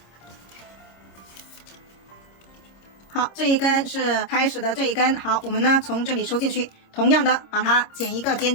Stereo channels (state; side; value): late; right; 26 ms